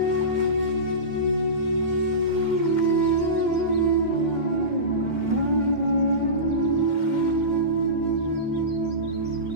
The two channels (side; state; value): right; late; 2.1 ms